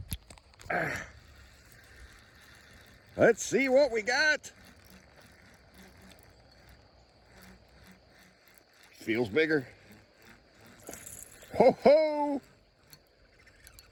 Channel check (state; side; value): identical; both; correlation 1.00